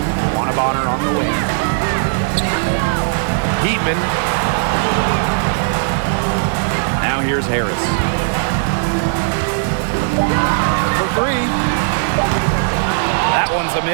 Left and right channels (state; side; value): silent; left; digital silence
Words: Wanabonner on the wing. Heatman. Now here's Harris. For three. That one's a